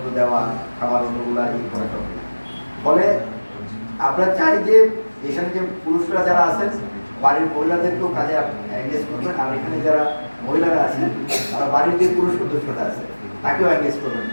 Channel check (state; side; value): inverted; both; correlation -1.00